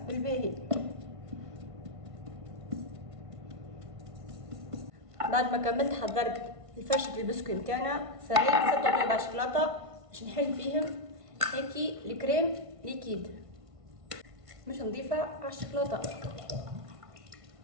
بالباهي. بعد ما كملت حضرت الفرشة البسكوي نتاعنا، سريت 6 طيبة شوكولاتة باش نحل فيهم هيكي الكريم ليكيد، مش نضيفها على الشوكولاتة،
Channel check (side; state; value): left; late; 1.5 ms